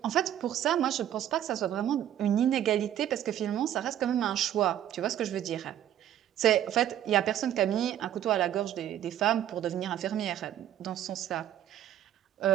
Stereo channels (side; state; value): left; quieter; 11.3 dB